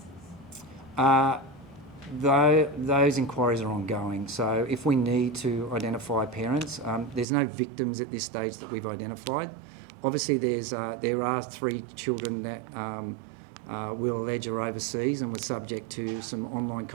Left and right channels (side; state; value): left; drops out; at 7.2 s